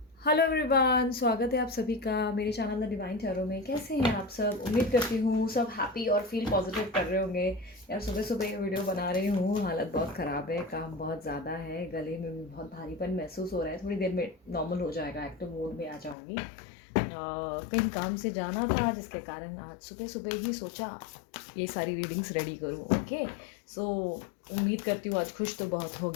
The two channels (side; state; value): right; drops out; at 16.2 s